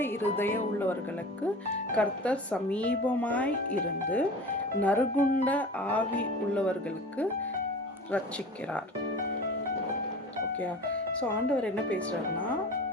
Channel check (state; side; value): normal; both; correlation 0.37